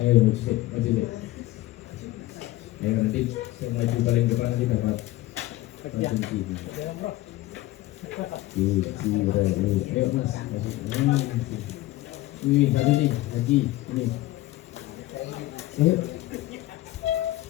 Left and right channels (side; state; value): right; quieter; 16.8 dB